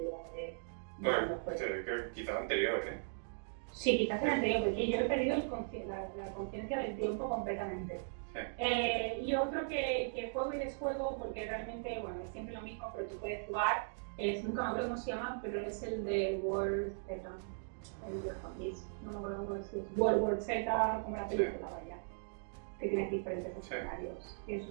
de Bueno, cuándo fue. creo que quizás anterior, ¿eh? Sí, quizás el anterior, porque yo he perdido la conciencia del tiempo completamente. Sí. Y otro que juego y desjuego, porque realmente, bueno, es siempre lo mismo, pero tú puedes jugar, nunca me acuerdo cómo se llama, pero es el de World Z, el de Zombies, no me acuerdo cómo decir, World War Z, como la película, vaya, que tienes diferentes escenarios. Y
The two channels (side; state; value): left; silent; digital silence